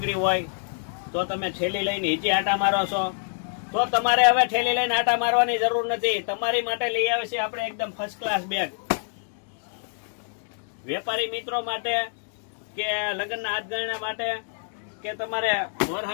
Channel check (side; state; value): right; silent; digital silence